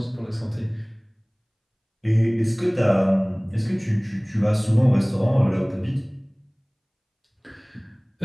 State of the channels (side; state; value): both; identical; correlation 1.00